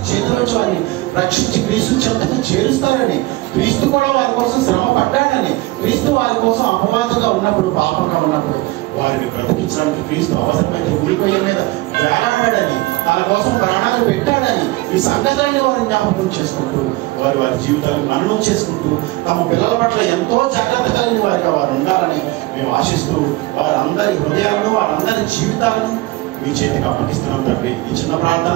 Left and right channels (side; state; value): left; quieter; 20.1 dB